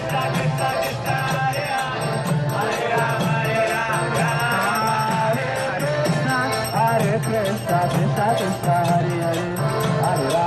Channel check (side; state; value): both; identical; correlation 1.00